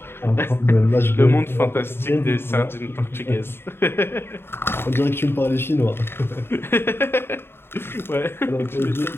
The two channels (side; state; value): right; late; 0.11 ms